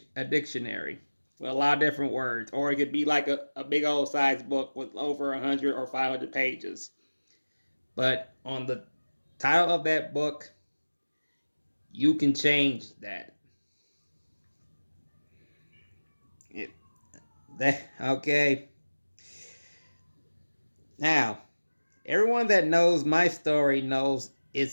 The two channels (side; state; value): both; inverted; correlation -1.00